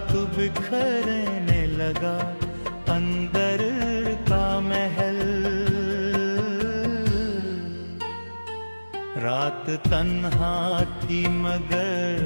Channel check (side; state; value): both; inverted; correlation -1.00